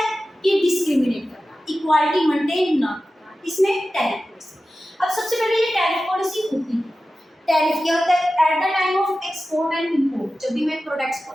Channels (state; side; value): normal; both; correlation 0.94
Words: कि डिस्क्रिमिनेट करना, इक्वालिटी मेंटेन ना करना, इसमें टैरिफ पॉलिसी। अब सबसे पहले ये टैरिफ पॉलिसी होती है, टैरिफ क्या होता है, at the time of export and import, जब भी मैं प्रोडक्ट्स को